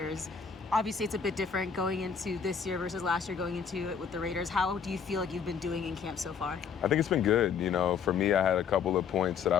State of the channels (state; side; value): quieter; right; 6.6 dB